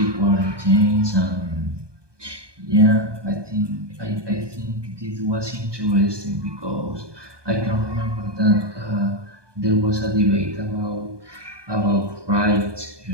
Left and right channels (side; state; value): left; late; 1.2 ms